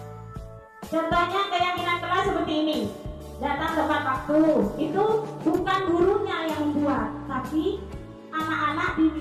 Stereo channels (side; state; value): both; identical; correlation 1.00